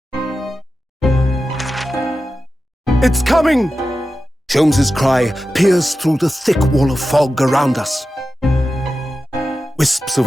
It's coming! Sholmes's cry pierced through the thick wall of fog around us. Wisps of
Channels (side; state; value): both; normal; correlation 0.92